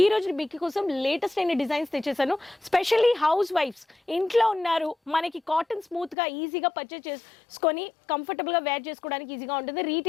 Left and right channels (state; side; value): drops out; right; at 6.2 s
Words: ఈ రోజు బిక్కి కోసం లేటెస్ట్ అయిన డిజైన్స్ తెచ్చేసాను. స్పెషల్లీ హౌస్ వైఫ్స్ ఇంట్లో ఉన్నారు, మనకి కాటన్ స్మూత్గా ఈజీగా పర్చేస్ చేసుకొని కంఫర్టబుల్గా వేర్ చేసుకోవడానికి ఈజీగా ఉంటుంది.